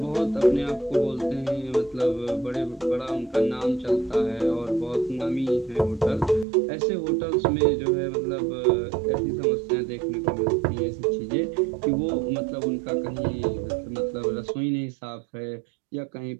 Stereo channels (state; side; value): drops out; left; at 6.5 s